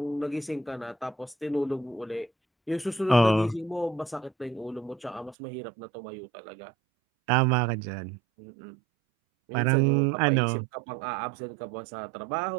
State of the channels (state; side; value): drops out; left; at 5.4 s